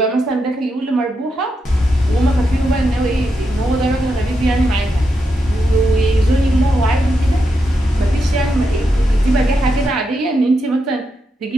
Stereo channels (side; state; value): both; normal; correlation 0.84